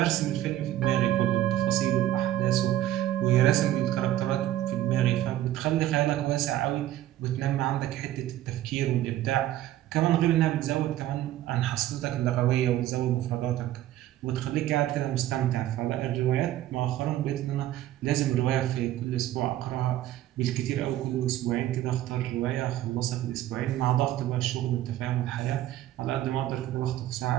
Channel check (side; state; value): left; quieter; 13.4 dB